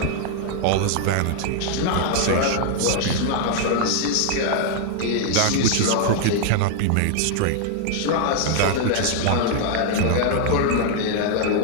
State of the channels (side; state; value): both; different; correlation 0.00